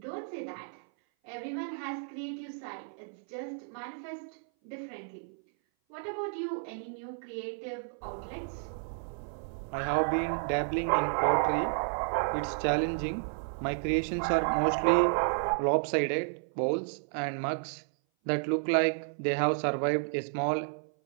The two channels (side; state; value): left; silent; 57 dB below the other